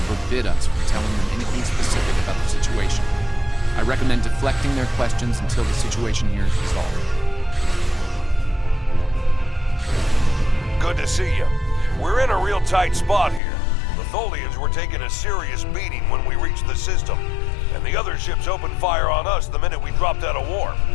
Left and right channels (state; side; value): drops out; right; at 13.4 s